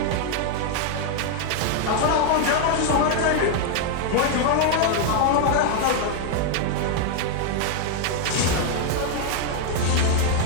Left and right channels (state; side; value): different; both; correlation 0.00